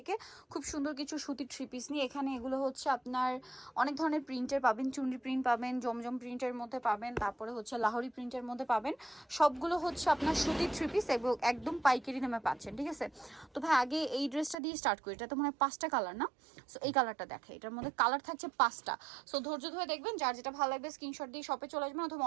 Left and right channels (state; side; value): drops out; left; at 14.6 s